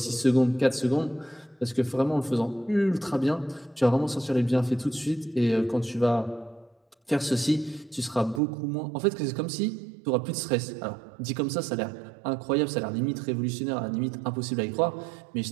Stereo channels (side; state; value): left; drops out; at 8.4 s